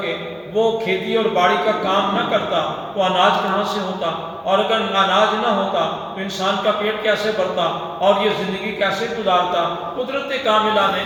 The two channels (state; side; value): identical; both; correlation 1.00